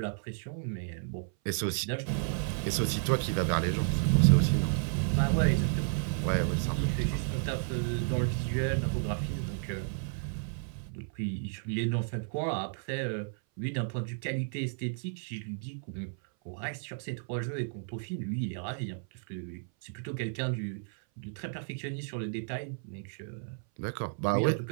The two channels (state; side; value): silent; left; 56 dB below the other